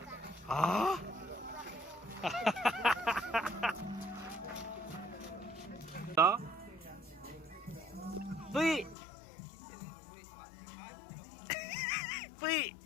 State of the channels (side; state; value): right; drops out; at 9.0 s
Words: 아. 자. 뿌이. 뿌이.